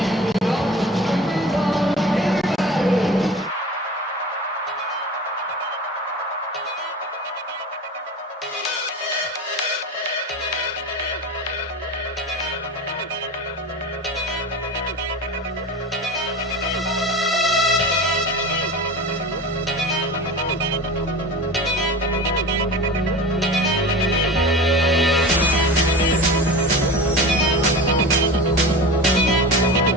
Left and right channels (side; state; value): both; normal; correlation 0.33